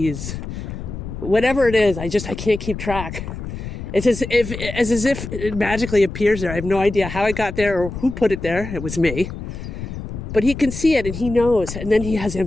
whatever it is. I can't keep track. It's as if it magically appears there. I have no idea how it got there or who put it there. It was me. But he can see it and he knows. And then he has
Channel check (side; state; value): left; noise; rumble, 8 dB below the sound